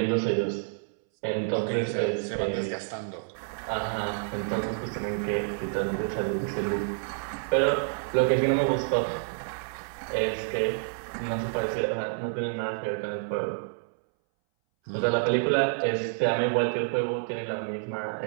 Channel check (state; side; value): silent; left; 59 dB below the other